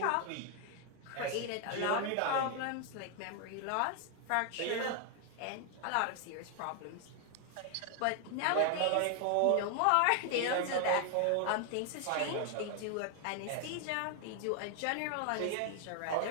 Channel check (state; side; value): different; both; correlation 0.00